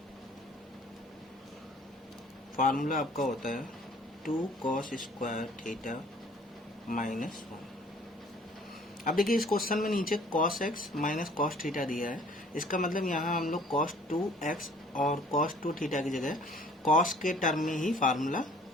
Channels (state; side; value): normal; both; correlation 0.54